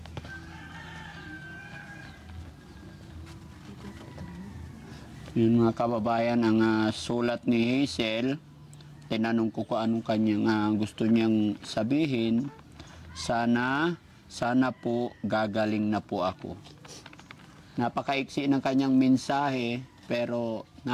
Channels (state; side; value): identical; both; correlation 1.00